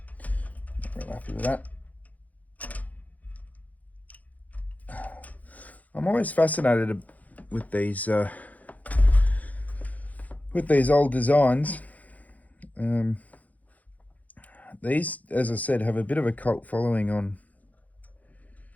Not real happy with that. I'm always fascinated with these old designs. These, as I said, have a bit of a cult following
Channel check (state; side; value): late; right; 0.076 ms